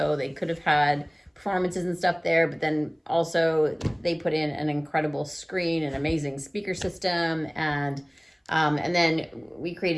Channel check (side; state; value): both; identical; correlation 1.00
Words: they could have had performances and stuff there, but then also they put in an incredible screen, an amazing speaker system, and then we